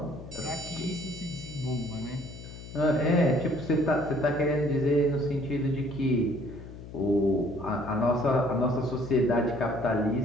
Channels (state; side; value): noise; left; hum, 14 dB below the sound